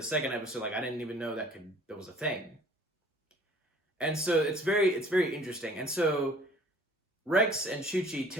second episode, like, I didn't even know that was a thing. And so it's very interesting. And so Rex and Chuchi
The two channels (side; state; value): both; normal; correlation 0.52